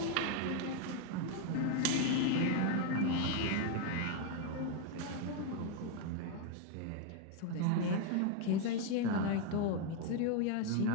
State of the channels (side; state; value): both; different; correlation 0.01